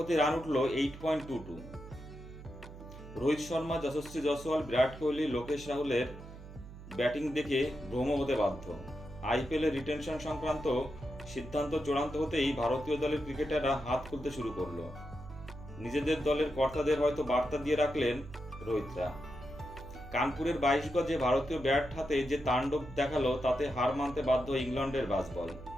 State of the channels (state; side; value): noise; right; hum, 15 dB below the sound